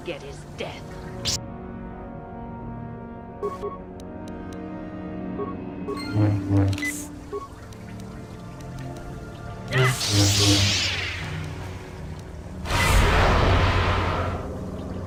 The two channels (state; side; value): identical; both; correlation 1.00